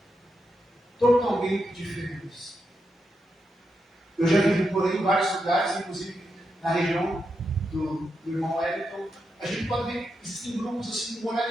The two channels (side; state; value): both; normal; correlation 0.85